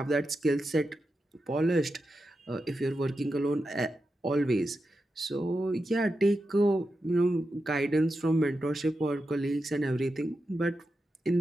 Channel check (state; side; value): normal; both; correlation 0.89